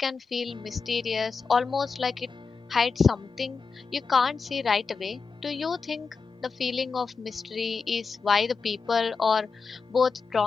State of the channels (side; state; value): right; quieter; 4.9 dB